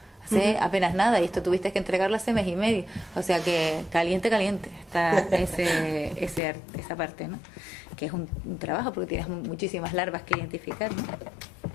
hace apenas nada, y esto tuviste que entregarlo hace mes y medio, o sea que caliente está esa parte, ¿no? Que es un trabajo porque tienes muchísimas larvas que identificar, ¿no?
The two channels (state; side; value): drops out; right; at 6.4 s